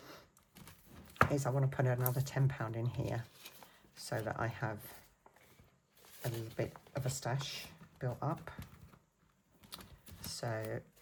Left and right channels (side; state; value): both; identical; correlation 1.00